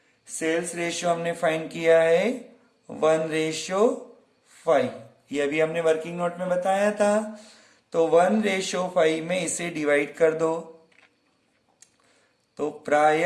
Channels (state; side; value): identical; both; correlation 1.00